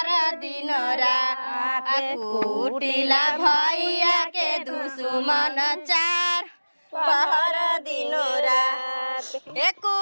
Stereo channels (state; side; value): inverted; both; correlation -1.00